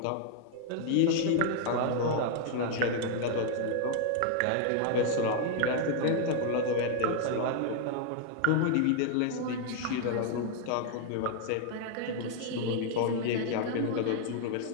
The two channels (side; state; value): both; different; correlation 0.00